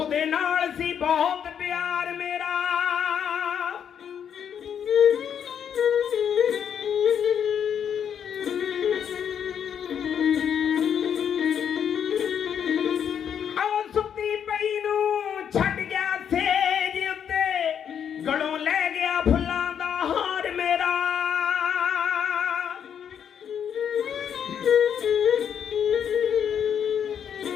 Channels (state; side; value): quieter; right; 8.3 dB